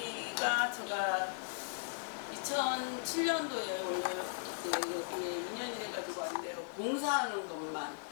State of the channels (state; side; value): silent; right; 53 dB below the other